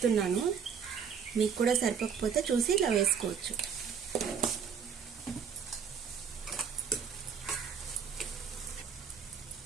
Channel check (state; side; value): quieter; left; 7.0 dB